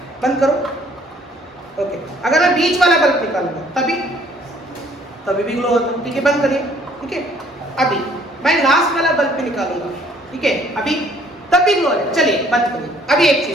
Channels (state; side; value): normal; both; correlation 0.60